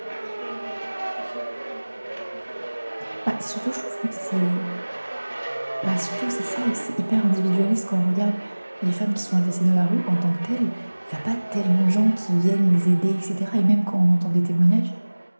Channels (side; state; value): both; inverted; correlation -1.00